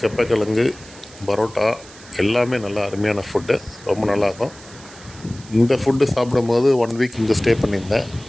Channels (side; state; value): right; noise; hiss, 20 dB below the sound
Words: கெப்பக்கிழங்கு, பரோட்டா எல்லாமே நல்லா அருமையான ஃபுட்டு, ரொம்ப நல்லாயிருக்கும். இந்த ஃபுட்டு சாப்பிடும்போது 1 வீக் இங்கே ஸ்டே பண்ணியிருந்தேன்.